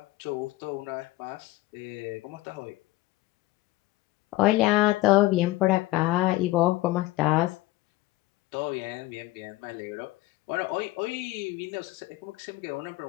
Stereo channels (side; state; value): right; quieter; 18.6 dB